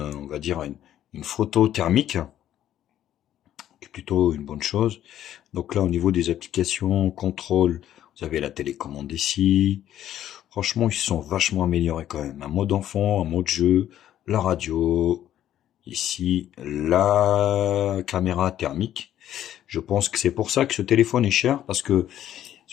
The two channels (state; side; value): quieter; right; 11.6 dB